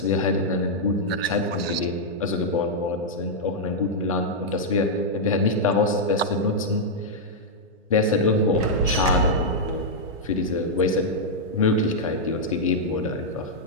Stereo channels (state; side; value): normal; both; correlation -0.06